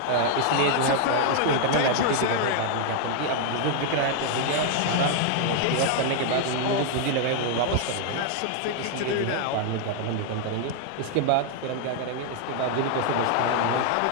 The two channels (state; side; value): different; both; correlation 0.00